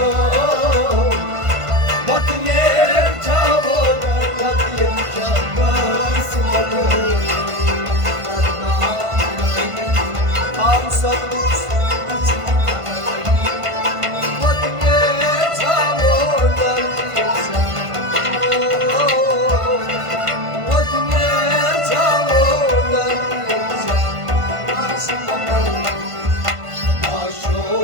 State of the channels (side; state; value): left; late; 1.5 ms